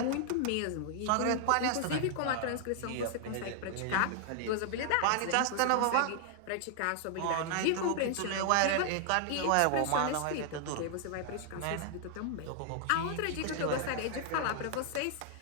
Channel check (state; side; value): different; both; correlation 0.00